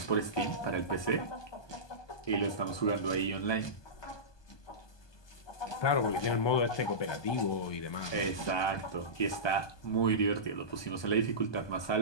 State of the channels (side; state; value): right; late; 1.2 ms